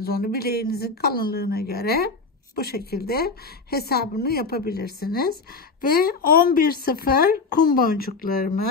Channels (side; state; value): right; quieter; 4.2 dB